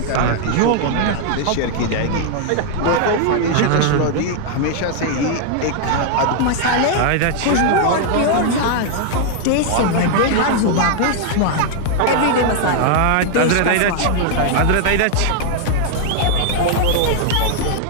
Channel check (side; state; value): both; different; correlation 0.00